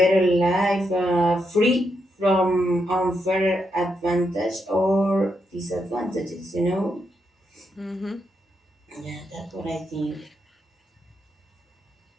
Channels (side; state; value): both; normal; correlation 0.81